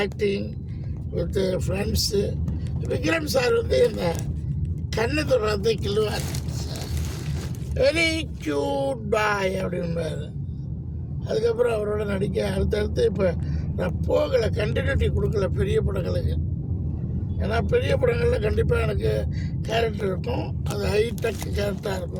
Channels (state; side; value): identical; both; correlation 1.00